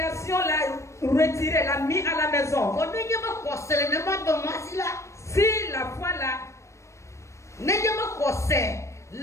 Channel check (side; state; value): right; late; 0.14 ms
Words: l'a retiré, l'a mis à la maison. Si la foi là,